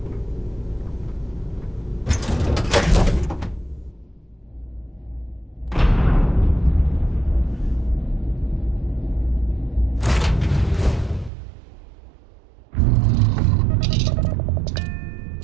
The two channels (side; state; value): left; drops out; at 11.3 s